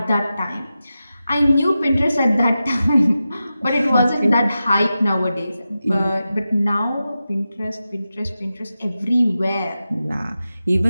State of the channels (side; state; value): both; inverted; correlation -0.92